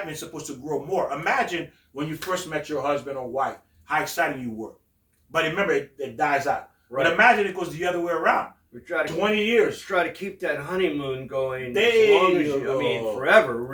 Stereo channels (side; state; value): both; identical; correlation 1.00